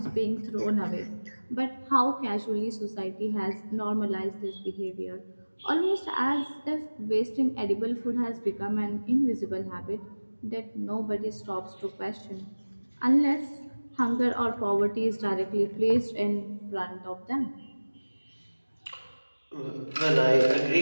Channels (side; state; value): both; inverted; correlation -1.00